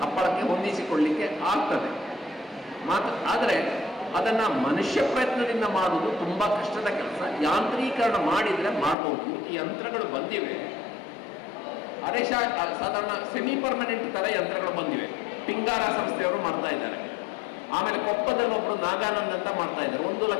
ಹಪ್ಪಳಕ್ಕೆ ಹೊಂದಿಸಿಕೊಳ್ಳಿಕ್ಕೆ ಆಗ್ತದೆ ಆದರೆ ಅದನ್ನು ಮನುಷ್ಯ ಪ್ರಯತ್ನದಿಂದ ಮಾಡುವುದು ತುಂಬ ಕಷ್ಟದ ಕೆಲಸ. ಯಾಂತ್ರೀಕರಣ ಮಾಡಿದರೆ ಮಾಡ್ಬೋದು. ಈ ಯಂತ್ರಗಳು ಬಂದಿವೆ, ಸಾಧಾರಣ ಸೆಮಿ ಪರ್ಮನೆಂಟ್ ಥರ ಯಂತ್ರಗಳು ಬಂದಿವೆ. ಪಿಂಗಾರ ಸಂಸ್ಥೆಯವರು ಮಾಡ್ತಾ ಇದ್ದಾರೆ. ಆಮೇಲೆ ಕೊಪ್ಪದಲ್ಲಿ ಒಬ್ಬರು ನಾಗಾನಂದ್ ಅಂತ ಮಾಡ್ತಾ ಇದ್ದಾರೆ. 1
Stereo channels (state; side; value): drops out; right; at 9.0 s